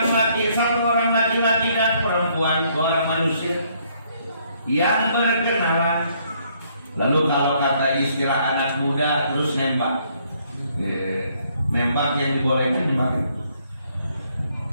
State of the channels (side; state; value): both; inverted; correlation -0.68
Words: laki, satu orang laki-laki dan perempuan, dua orang manusia yang berkenalan. Lalu kalau kata istilah anak muda, terus nembak. Nembak yang dibolehkan nembak.